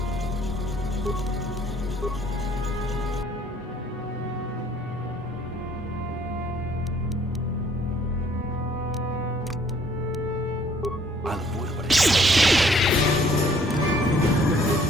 I'll avoid what I can.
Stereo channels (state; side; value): normal; both; correlation 0.60